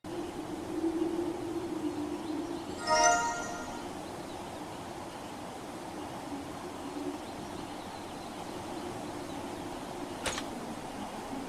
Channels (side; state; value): both; identical; correlation 1.00